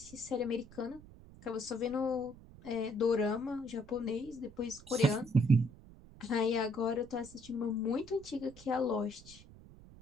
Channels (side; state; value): right; noise; rumble, 20 dB below the sound